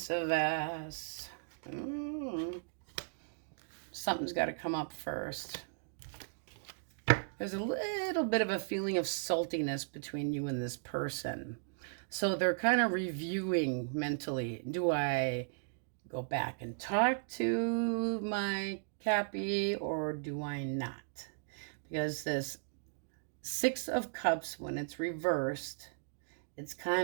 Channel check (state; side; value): silent; left; digital silence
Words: of ass. Something's got to come up first. There's a little bit of a feeling of saltiness between you and this person. So they're kind of reviewing mentally. Do I go back and talk to my Cappy or do I not? Because this Six of Cups, when it's reversed, it's